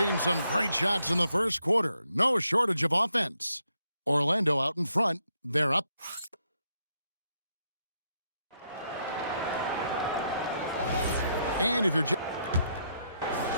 some great shots in the first quarter. No shortage of offense. Orlando out in front. They're up. And if you're the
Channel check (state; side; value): inverted; both; correlation -0.77